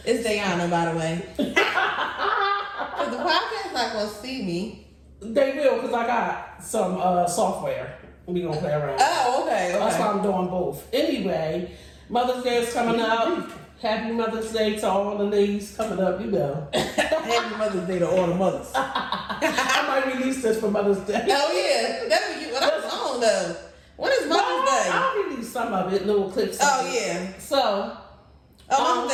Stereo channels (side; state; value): both; identical; correlation 1.00